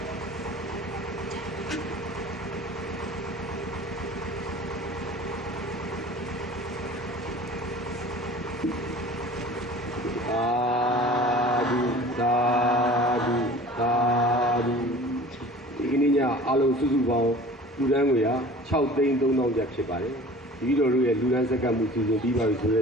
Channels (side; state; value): both; normal; correlation 0.44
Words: အားလုံးစုစုပေါင်းလူဒန်းငွေဟာ6,300,000ကျပ်ဖြစ်ပါတယ်ဒီလိုတို့ရဲ့လူဒန်းစက္ကန့်မှုစီစဉ်ပြီးပါပြီဆိုတဲ